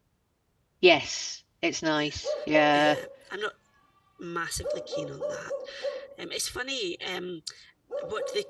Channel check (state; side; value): identical; both; correlation 1.00